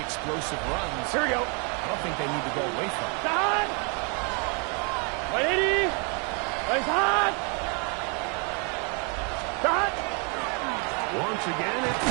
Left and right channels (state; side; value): quieter; left; 35.7 dB